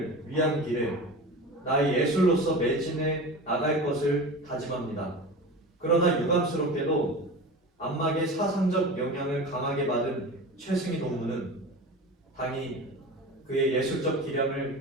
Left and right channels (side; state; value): both; normal; correlation 0.31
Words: 위한 길에 나의 예술로서 매진해 나갈 것을 다짐합니다. 그러나 유감스럽게도 안막의 사상적 영향을 강하게 받은 최승희 동무는 당이 그의 예술적 기량을